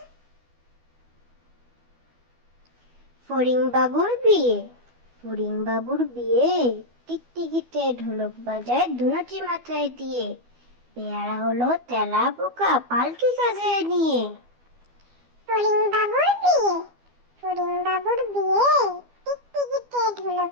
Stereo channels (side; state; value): left; late; 12 ms